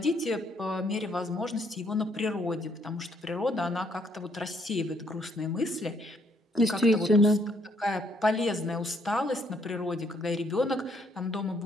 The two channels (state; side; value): normal; both; correlation 0.69